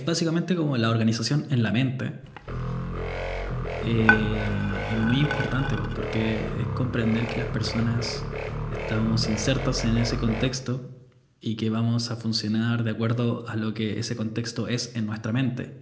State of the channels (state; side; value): identical; both; correlation 1.00